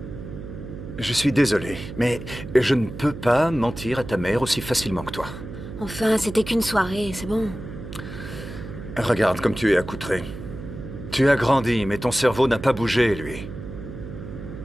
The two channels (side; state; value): right; noise; hum, 11 dB below the sound